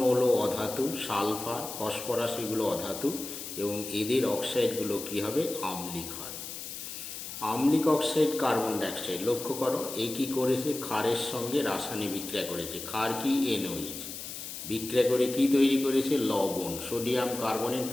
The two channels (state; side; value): noise; left; hiss, 9 dB below the sound